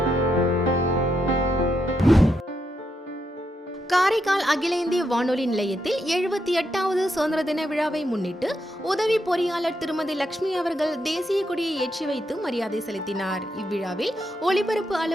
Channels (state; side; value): normal; both; correlation 0.81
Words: காரைக்கால் அகில இந்திய வானொலி நிலையத்தில் 78வது சுதந்திர தின விழாவை முன்னிட்டு உதவி பொறியாளர் திருமதி லட்சுமி அவர்கள் தேசிய கொடியை ஏற்றி வைத்து மரியாதை செலுத்தினார். இவ்விழாவில் ஒலிபரப்பு